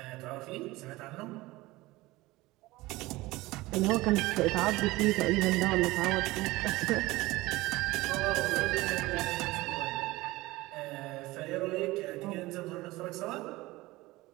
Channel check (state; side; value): quieter; left; 19.8 dB